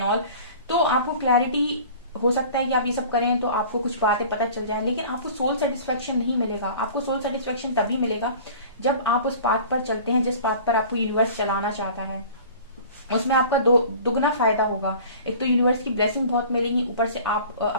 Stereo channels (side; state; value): both; inverted; correlation -0.43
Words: ऑल, तो आपको क्लैरिटी हो सकता है कि आप ये सब करें तो आपको कुछ बातें पता चल जाए, लेकिन आपको सोल सेटिस्फेक्शन नहीं मिलेगा। आपको सोल सेटिस्फेक्शन तभी मिलेगा जब आप उस पाथ पर चलते हैं जिस पाथ पर आपको यूनिवर्स चलाना चाहता है, उसमें आपका दुगना फायदा होगा। एक तो यूनिवर्स की ब्लेसिंग बहुत मिलेगी, ऊपर से आप